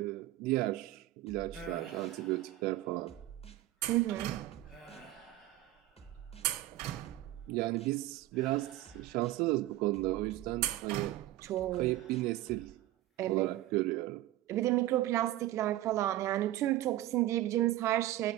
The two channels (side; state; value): left; quieter; 15.3 dB